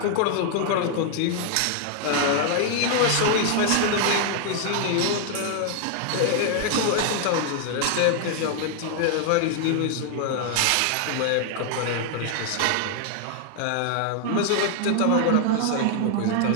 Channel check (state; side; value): different; both; correlation 0.00